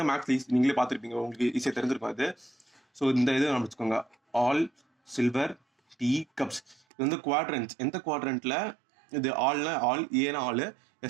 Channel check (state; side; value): drops out; left; at 6.8 s